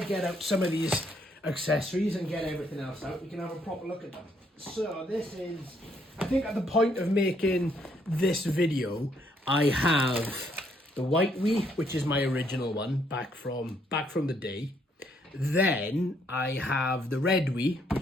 out some of these accessories and get everything else out, we can have a proper look at them. So this is, I think at the point of making this video, I have the white Wii, which is my original one, back from the day. Then I have the red Wii,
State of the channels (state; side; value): normal; both; correlation 0.71